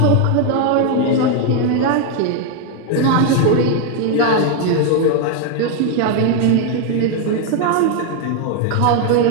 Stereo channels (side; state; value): both; different; correlation 0.01